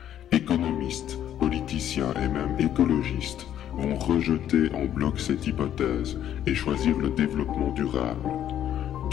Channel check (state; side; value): quieter; right; 10.8 dB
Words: Économistes, politiciens et même écologistes vont rejeter en bloc cette hypothèse et choisir le développement durable.